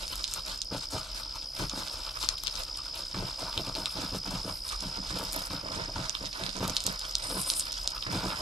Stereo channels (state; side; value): normal; both; correlation 0.69